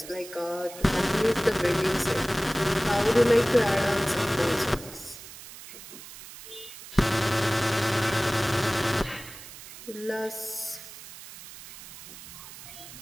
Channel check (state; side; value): noise; right; hiss, 15 dB below the sound